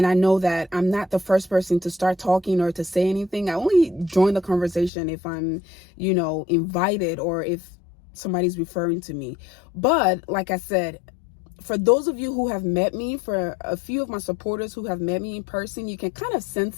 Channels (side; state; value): right; drops out; at 4.9 s